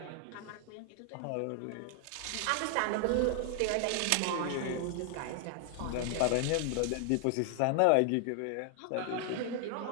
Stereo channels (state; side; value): different; both; correlation 0.00